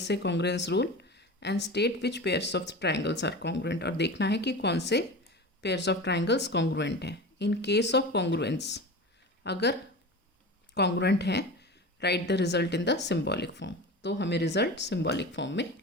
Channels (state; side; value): normal; both; correlation 0.31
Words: congruence rule and state which pairs of triangles are congruent, और देखना है कि कौन से pairs of triangles congruent हैं. In case of congruence, अगर congruent है, right the result in the symbolic form. तो हमें रिजल्ट सिंबॉलिक फॉर्म में